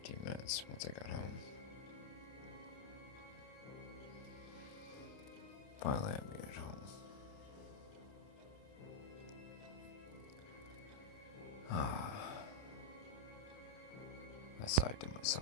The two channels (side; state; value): right; late; 29 ms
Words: minutes once I got home. Finally, I made it home. I sighed to